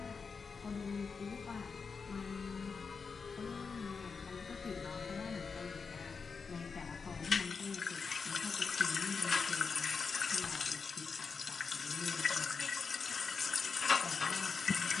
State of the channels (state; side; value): quieter; right; 5.2 dB